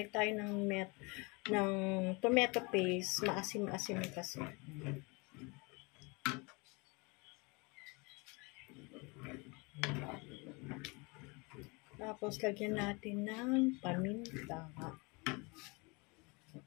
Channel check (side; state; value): right; quieter; 28.3 dB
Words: tayo ng tomato paste, maasim-asim kasi. Tapos lagyan natin ng paminta.